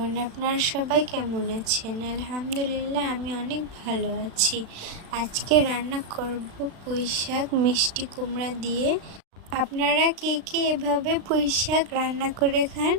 আপনারা সবাই কেমন আছেন? আলহামদুলিল্লাহ আমি অনেক ভালো আছি। আজকে রান্না করব পুঁই শাক মিষ্টি কুমড়া দিয়ে। আপনারা কে কে এভাবে পুঁই শাক রান্না করে খান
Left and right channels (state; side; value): late; left; 36 ms